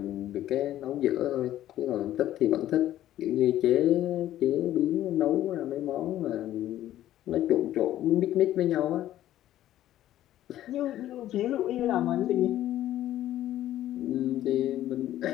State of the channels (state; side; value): quieter; right; 13.1 dB